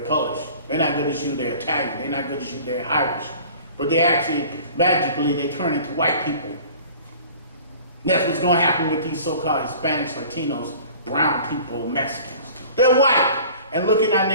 Polish. They're not good as you, they're Italian. They're not good as you, they're Irish. But they actually, magically, they turn into white people. And that's what's gonna happen with these so-called Hispanics, Latinos, brown people, Mexicans. They're white, and look in our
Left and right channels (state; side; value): inverted; both; correlation -0.45